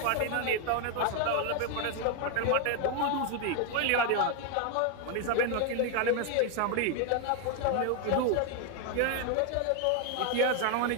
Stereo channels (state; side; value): different; both; correlation 0.01